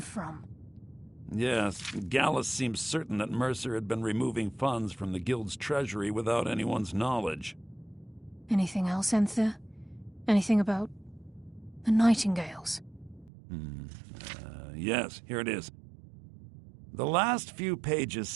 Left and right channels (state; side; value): drops out; left; at 13.3 s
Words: Yes, Gallus seems certain that Mercer had been removing funds from the Guild's treasury without anyone's knowledge. Anything else, Enther? Anything about the Nightingales? Yes, here it is. The last few pages